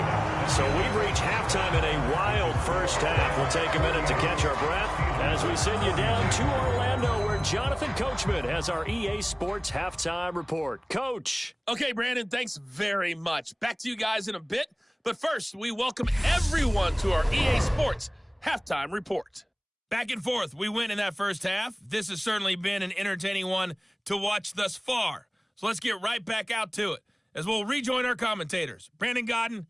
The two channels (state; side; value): identical; both; correlation 1.00